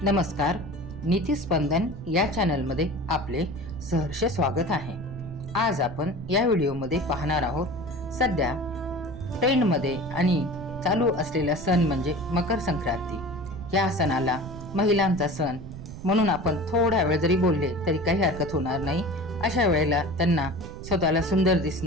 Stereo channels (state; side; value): noise; right; rumble, 12 dB below the sound